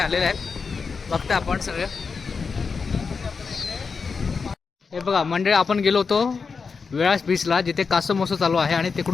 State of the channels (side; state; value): right; quieter; 5.1 dB